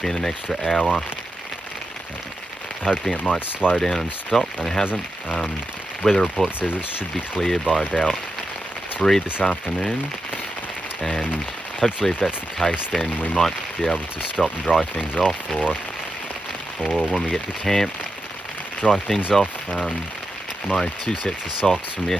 in an extra hour, hoping it might slow down and stop, and it hasn't. Weather report says it should be clear by about 3 this afternoon, and hopefully if that's the case, then we might be able to stop and dry things off, or when we get to camp, dry things off. My 2 sets of socks from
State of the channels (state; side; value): normal; both; correlation 0.88